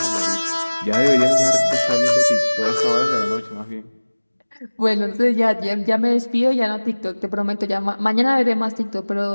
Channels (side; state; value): both; inverted; correlation -1.00